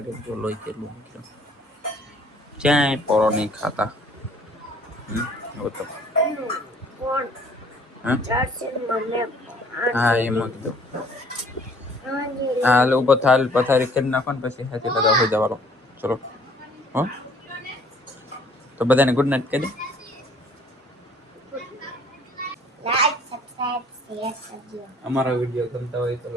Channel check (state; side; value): normal; both; correlation 0.57